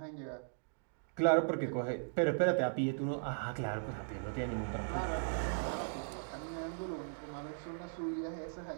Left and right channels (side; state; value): left; silent; digital silence